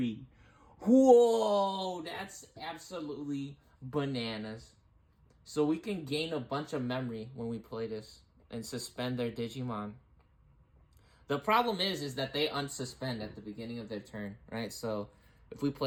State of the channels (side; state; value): both; identical; correlation 1.00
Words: Whoa, that's absolutely bananas. So we can gain a bunch of memory when we play this and suspend their Digimon. The problem is that they unsuspend at the beginning of their turn, right? So if we